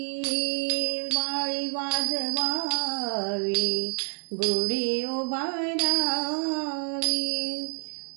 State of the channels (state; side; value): silent; left; 60 dB below the other